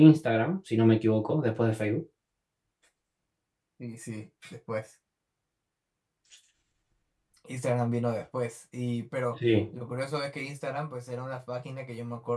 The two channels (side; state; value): both; identical; correlation 1.00